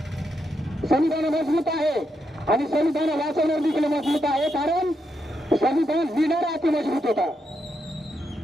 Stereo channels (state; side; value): normal; both; correlation 0.82